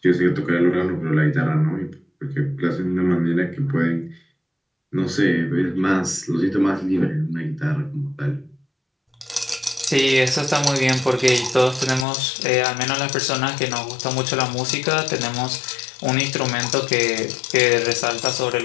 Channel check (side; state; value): right; drops out; at 12.1 s